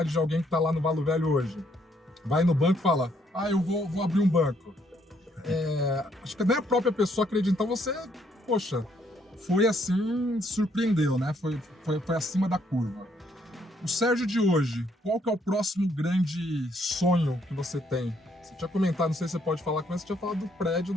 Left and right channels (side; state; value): both; normal; correlation 0.70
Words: de alguém que está lá no Valo Velho hoje, vai no banco e fala, eu vou abrir um banco. Acho que nem a própria pessoa acredita, então você, poxa, foi assim, surpreendeu, né? Foi acima da curva. O Sérgio de hoje, qual que é o próximo grande sonho que você tem? Você tinha comentado, não sei se você pode falar com você tinha falado do prédio